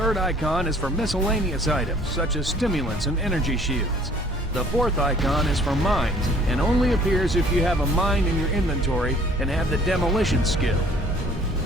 icon is for miscellaneous items such as stimulants and energy shields. The fourth icon is for mines and only appears if you have a mine in your inventory and have the demolition skill.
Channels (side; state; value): both; normal; correlation 0.55